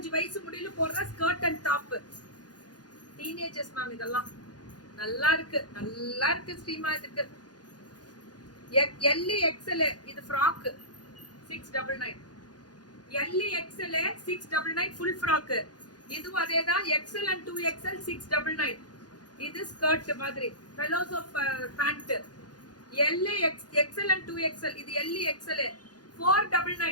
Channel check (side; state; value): right; late; 0.69 ms